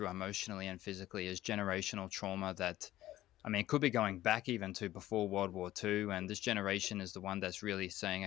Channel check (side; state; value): right; quieter; 14.7 dB